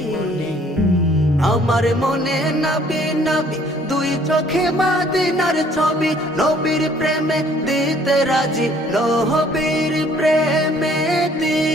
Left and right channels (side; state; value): both; normal; correlation 0.59